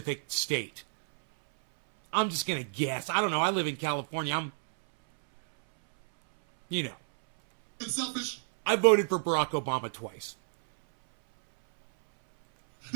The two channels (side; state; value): left; silent; 58 dB below the other